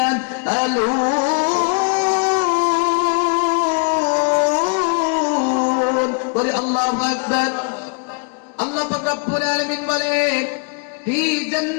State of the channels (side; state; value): right; quieter; 39.8 dB